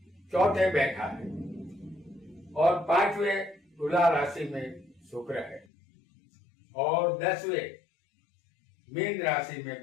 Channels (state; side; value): drops out; right; at 5.7 s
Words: चौथे बैठा है और 5वें तुला राशि में शुक्र है और 10वें मीन राशि में